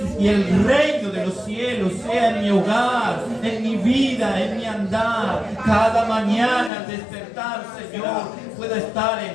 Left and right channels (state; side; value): drops out; right; at 6.7 s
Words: y el reino de los cielos sea en mi hogar, en mi vida, en mi andar. Cada mañana al despertar, Señor, pueda estar